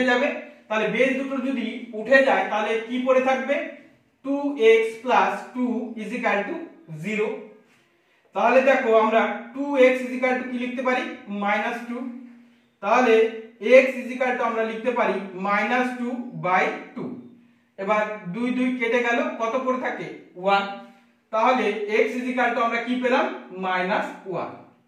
যাবে। তাহলে বেস দুটো যদি উঠে যায় তাহলে কি পড়ে থাকবে 2x plus 2 is equal to 0। তাহলে দেখো আমরা 2x is equal to কি লিখতে পারি -2, তাহলে x is equal to আমরা লিখতে পারি -2/2। এবার 2 2 কেটে গেল, কত পড়ে থাকে 1, তাহলে x is equal to আমরা কি পেলাম -1।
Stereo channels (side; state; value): both; identical; correlation 1.00